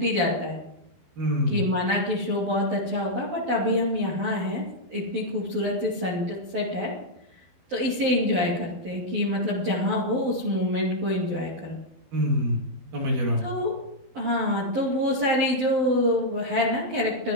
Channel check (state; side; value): late; left; 12 ms